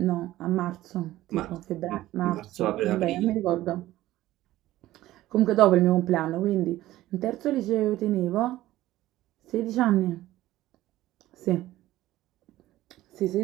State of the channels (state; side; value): quieter; left; 15.5 dB